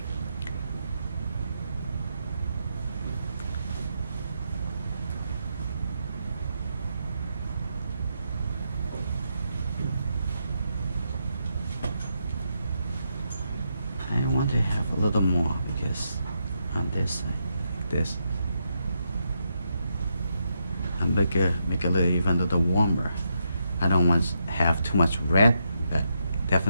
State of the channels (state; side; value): inverted; both; correlation -0.81